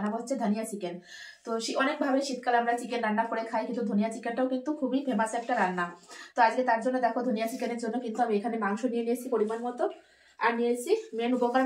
হচ্ছে ধনিয়া চিকেন। তো অনেকভাবে শীতকালে আমরা চিকেন রান্না করে খাই, কিন্তু ধনিয়া চিকেনটাও কিন্তু খুবই ফেমাস একটা রান্না। তো আজকে তার জন্য দেখো, ধনিয়া চিকেনের জন্য কিন্তু আমি এখানে মাংস নিয়ে নিয়েছি পরিমাণ মতো। আর নিয়েছি মেন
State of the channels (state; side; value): identical; both; correlation 1.00